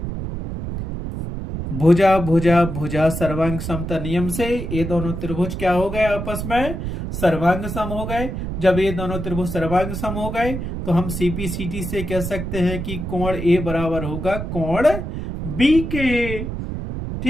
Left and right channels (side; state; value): right; noise; rumble, 5 dB below the sound